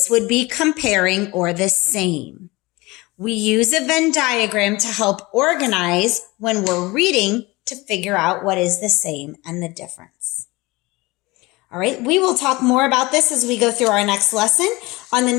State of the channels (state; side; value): quieter; right; 22.2 dB